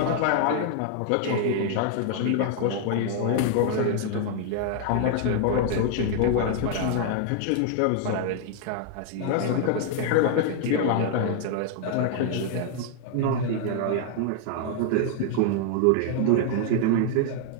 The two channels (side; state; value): both; different; correlation 0.00